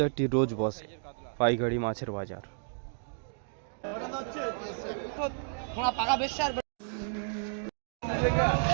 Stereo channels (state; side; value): silent; left; digital silence